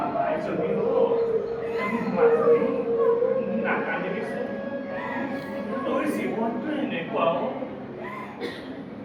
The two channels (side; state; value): both; identical; correlation 1.00